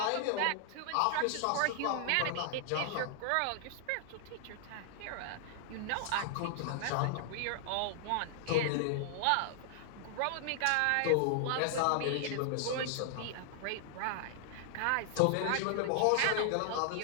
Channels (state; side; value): different; both; correlation 0.00